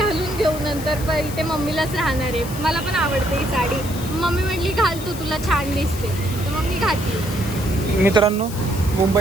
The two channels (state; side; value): noise; left; hiss, 13 dB below the sound